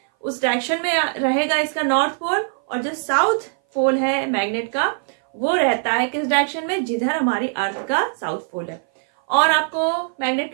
उस डायरेक्शन में रहेगा इसका नॉर्थ पोल। और जो साउथ पोल है मैग्नेट का वो रहता है किस डायरेक्शन में, जिधर हमारी अर्थ का साउथ पोल है। और आपको मैग्नेट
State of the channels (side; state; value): left; silent; 59 dB below the other